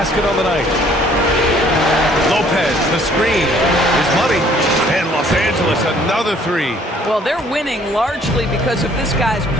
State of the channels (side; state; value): both; normal; correlation 0.59